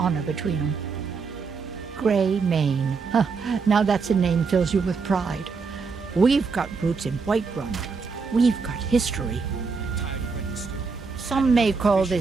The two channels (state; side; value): quieter; left; 4.9 dB